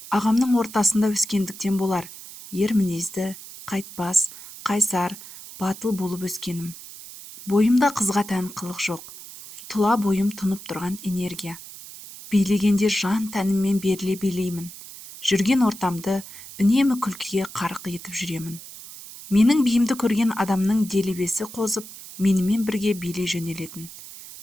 ағамның ортасында өскендіктен болар, ер мінезді, қайтпас, қайсар, батыл болып өскенім. Бойымда қызға тән қылық жоқ, тұла бойым тұнып тұрған энергия. Билегенде жан тәніммен беріле билеймін. Жүрген ортамды үнемі күлкіге қарық етіп жүремін. Менің биімді көрген адамның делебесі қозып, менімен бірге билей жөнелетін.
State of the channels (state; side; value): noise; right; hiss, 15 dB below the sound